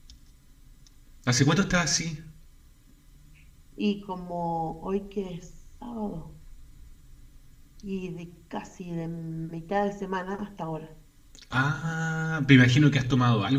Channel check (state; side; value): identical; both; correlation 1.00